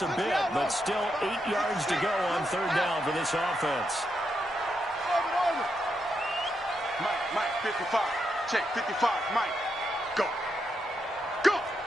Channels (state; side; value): normal; both; correlation 0.82